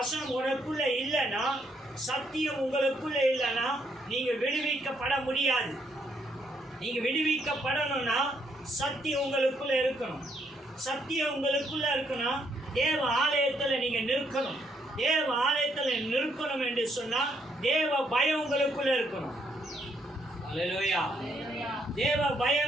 உனக்குள்ள இல்லைன்னா, சத்தியம் உங்களுக்குள்ள இல்லைன்னா நீங்க விடுவிக்கப்பட முடியாது. நீங்க விடுவிக்கப்படணும்னா சத்தியம் உங்களுக்குள்ள இருக்கணும். சத்தியம் உங்களுக்குள்ள இருக்கணும். தேவ ஆலயத்துல நீங்க நிற்கணும். தேவ ஆலயத்துல நிற்கணும் என்று சொன்னா தேவ பயம் உங்களுக்குள்ள இருக்கணும். அல்லேலூயா. தேவ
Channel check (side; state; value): both; normal; correlation 0.73